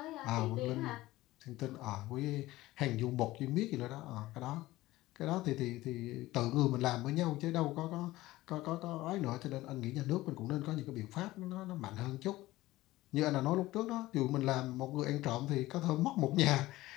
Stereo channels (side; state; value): right; quieter; 17.5 dB